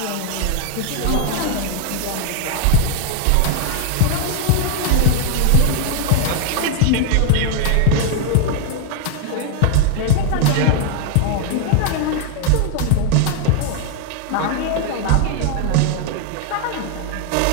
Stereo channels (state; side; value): different; both; correlation 0.00